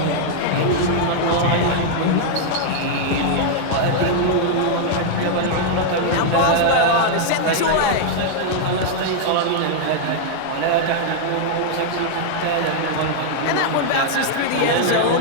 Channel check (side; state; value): both; different; correlation -0.01